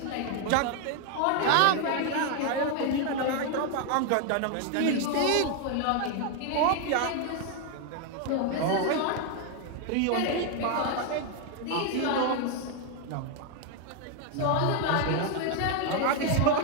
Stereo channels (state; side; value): different; both; correlation 0.01